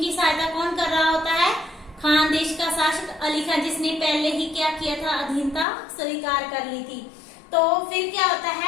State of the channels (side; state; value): right; drops out; at 5.7 s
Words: सहायता कौन कर रहा होता है? खानदेश खानदेश का शासक अली खान, जिसने पहले ही क्या किया था, अधीनता स्वीकार कर ली थी। तो फिर क्या होता